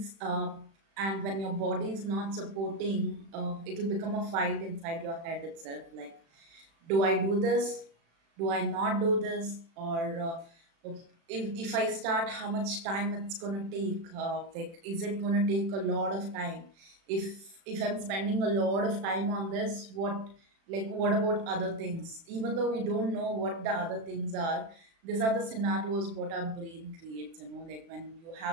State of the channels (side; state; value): left; late; 36 ms